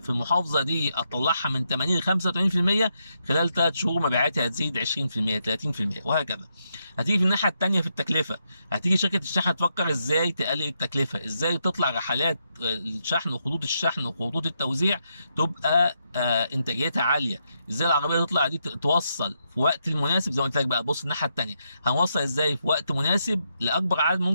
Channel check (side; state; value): both; inverted; correlation -0.80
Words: المحافظه دي اطلعها من 80 ل 85%، خلال 3 شهور مبيعاتي هتزيد 20% 30% وهكذا. هتيجي في الناحيه الثانيه في التكلفه، هتيجي شركه الشحن تفكر ازاي تقلل التكلفه، ازاي تطلع رحلات الشحن وخطوط الشحن وخطوط التوزيع تبقى انتاجيتها عاليه. ازاي العربيه تطلع دي توصل في وقت المناسب. زي ما قلت لك بقى، بص الناحيه الثانيه، هنوصل ازاي في وقت مناسب لاكبر عدد